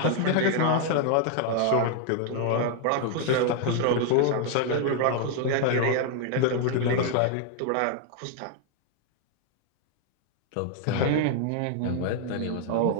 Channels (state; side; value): different; both; correlation 0.00